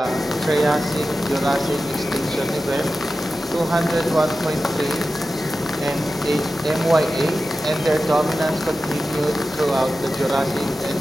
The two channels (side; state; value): both; normal; correlation 0.93